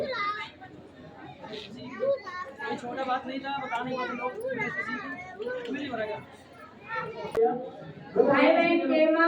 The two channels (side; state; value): both; identical; correlation 1.00